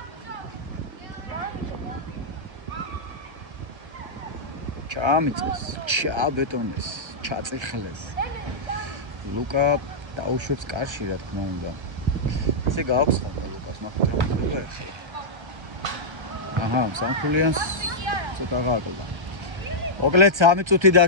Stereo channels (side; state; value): left; late; 1.3 ms